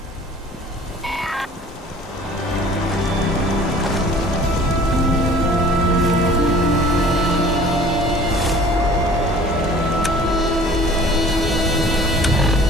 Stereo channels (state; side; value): normal; both; correlation 0.48